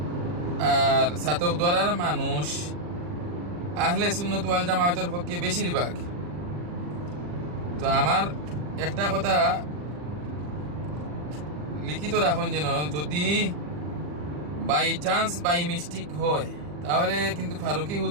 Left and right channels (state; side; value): late; left; 40 ms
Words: আর ছাতক দ্বারার মানুষ আহলে সুন্নাত ওয়াল জামাতের পক্ষে বেশিরভাগ। তো আমার একটা কথা লিখিত রাখুন, যেন যদি বাই চান্স বাই মিস্টেক হয় তাহলে কিন্তু ফারুকি